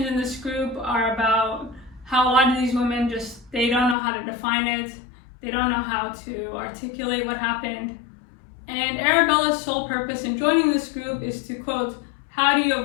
in this group are about how a lot of these women they don't know how to define it. They don't know how to articulate what happened. And Arabella's sole purpose in joining this group is to, quote, how do you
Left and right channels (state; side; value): drops out; right; at 4.0 s